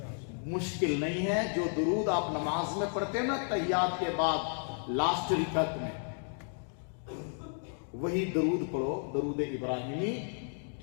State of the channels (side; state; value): right; silent; 56 dB below the other